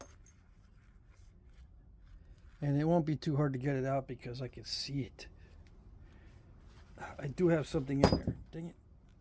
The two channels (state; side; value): identical; both; correlation 1.00